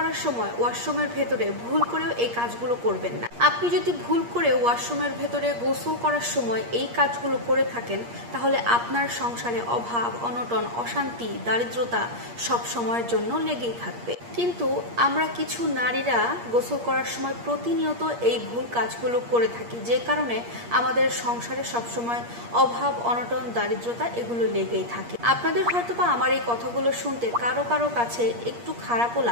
সময় ওয়াশরুমের ভেতরে ভুল করেও এই কাজগুলো করবেন না। আপনি যদি ভুল করে ওয়াশরুমের ভেতরে গোসল করার সময় এই কাজগুলো করে থাকেন, তাহলে আপনার সংসারে অভাব, অনটন, অশান্তি, দারিদ্রতা সব সময়ের জন্য লেগেই থাকবে। কিন্তু আমরা কিছু নারীরা গোসল করার সময় প্রতিনিয়ত এই ভুল কাজগুলো করে থাকি, যে কারণে আমাদের সংসারে সবসময় অভাব, অনটন, দারিদ্রতা এগুলো লেগেই থাকে। আপনাদের হয়তোবা আমার এই কথাগুলো শুনতে কারো কারো কাছে একটু খারাপও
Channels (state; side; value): late; left; 8.5 ms